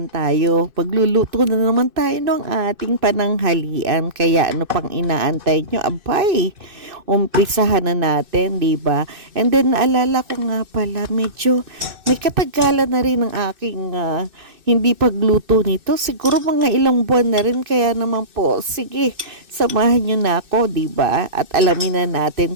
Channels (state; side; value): late; left; 2.6 ms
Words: tayo. Pagluluto na naman tayo ng ating pananghalian. Kaya ano pang inaantay nyo? Abay, umpisahan na natin, di ba? And then naalala ko nga pala, medyo may katagalan na rin ang aking hindi pagluto nito. Siguro mga ilang buwan na rin. Kaya naman po, sige, samahan nyo na ako, di ba? At alamin na natin